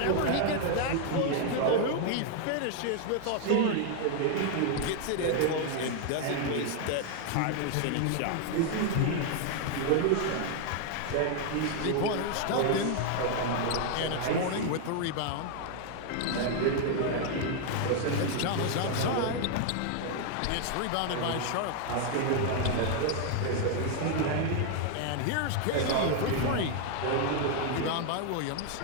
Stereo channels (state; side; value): different; both; correlation 0.00